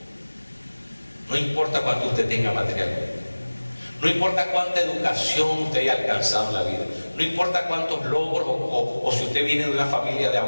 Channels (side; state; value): both; inverted; correlation -1.00